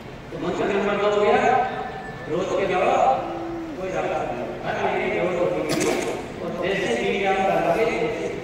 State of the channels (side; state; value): both; identical; correlation 1.00